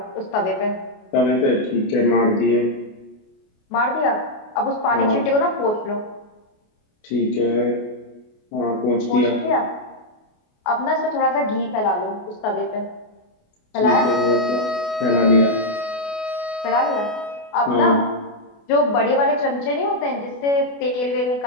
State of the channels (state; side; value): late; right; 28 ms